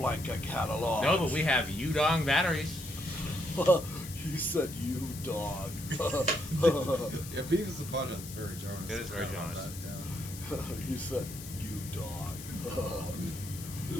catalog? No, but we have Yudong batteries. You said you dog. Yeah, Beavis and Butthead's very Jonas. It is very Forgot about Jonas. that, yeah. You said you dog.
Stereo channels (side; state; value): left; noise; hiss, 12 dB below the sound